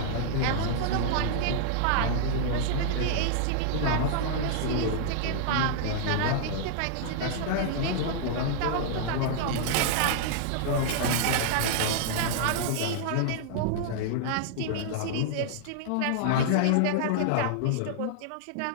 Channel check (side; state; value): both; different; correlation -0.01